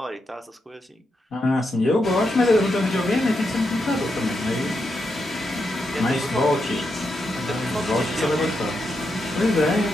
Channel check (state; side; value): normal; both; correlation 0.84